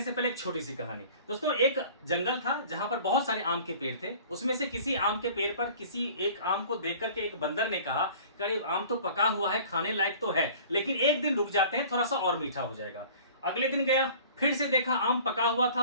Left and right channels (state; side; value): inverted; both; correlation -0.46